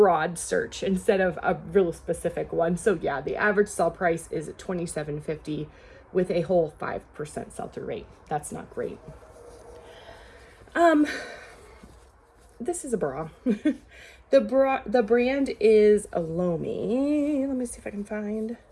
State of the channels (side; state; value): both; identical; correlation 1.00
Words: search instead of a real specific one. So yeah, the average sell price is $27.50 with a whole 5% sell-through rate. That's not great. This is a bra. The brand is Alomi. Let me see if I can find